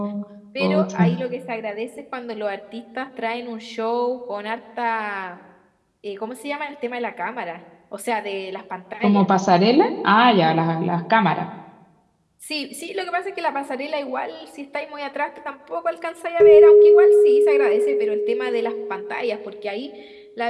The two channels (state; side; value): identical; both; correlation 1.00